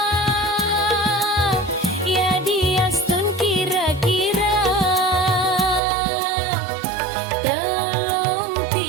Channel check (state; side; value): drops out; left; at 5.8 s